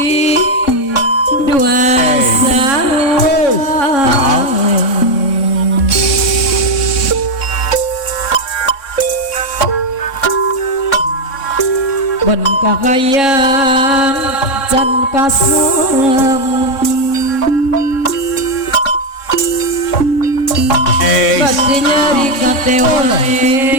dua ben kakayang can kasurem bati nyari kate wae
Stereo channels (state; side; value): late; right; 3.6 ms